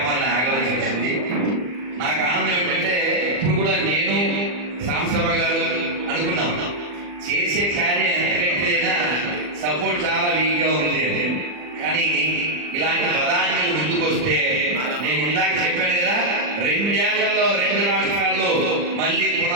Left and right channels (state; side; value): late; left; 40 ms